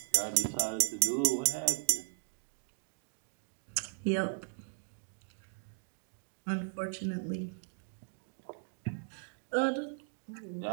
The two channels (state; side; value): silent; left; digital silence